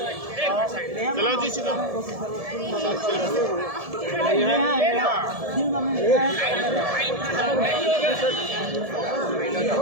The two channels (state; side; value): late; left; 1.7 ms